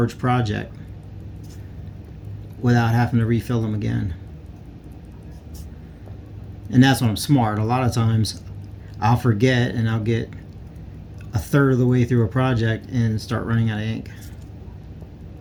project without having to refill them again. And that's when I'm smart. A lot of times I'll forget and I'll get a third of the way through a project and start running out of ink.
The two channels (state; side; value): identical; both; correlation 1.00